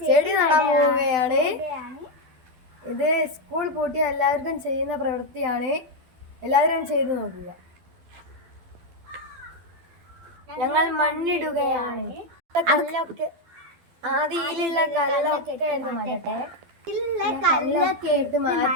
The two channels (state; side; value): late; left; 12 ms